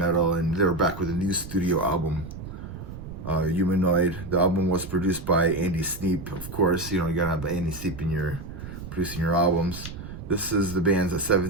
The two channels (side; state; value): right; noise; rumble, 11 dB below the sound